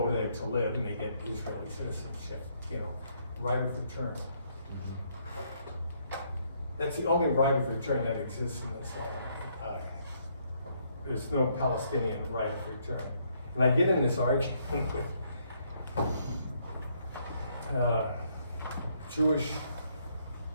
there to live and they get Israeli citizenship, you know, right of return. That's the only right of return that exists in this land. There's no Palestinian right of return. And I get in this argument with Jewish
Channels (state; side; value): inverted; both; correlation -0.71